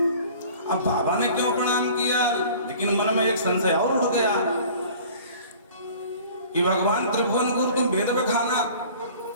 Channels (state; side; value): inverted; both; correlation -0.47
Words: अब बाबा ने क्यों प्रणाम किया, लेकिन मन में एक संशय और उठ गया कि भगवान त्रिभुवन गुरु तुम वेद बखाना,